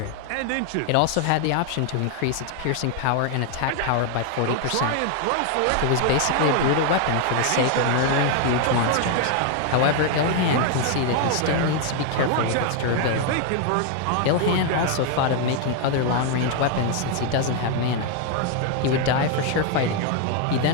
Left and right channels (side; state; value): both; different; correlation 0.00